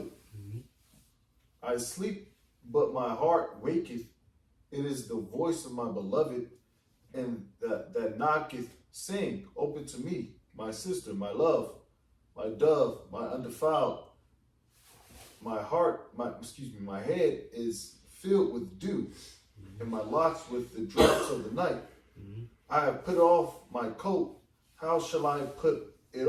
Mm-hmm. I sleep, but my heart waketh. It is the voice of my beloved, and that knocketh, saying, open to me, my sister, my love, my dove, my undefiled. My head is filled with dew, and my locks with the drops of the night. Mm-hmm. I have put off my coat. How shall I put it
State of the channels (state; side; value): identical; both; correlation 1.00